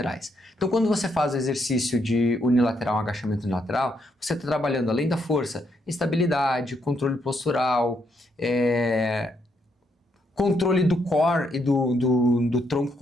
Então quando você faz o exercício de unilateral, um agachamento unilateral, você está trabalhando além da força, estabilidade, controle postural, controle do core e do tronco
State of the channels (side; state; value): both; normal; correlation 0.76